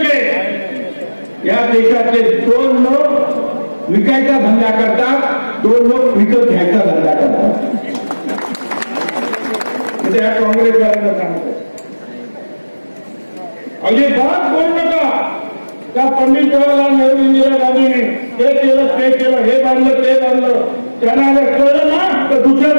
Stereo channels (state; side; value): inverted; both; correlation -1.00